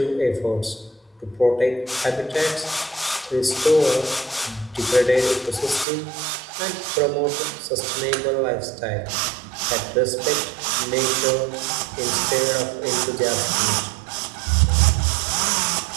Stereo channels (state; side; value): drops out; left; at 5.9 s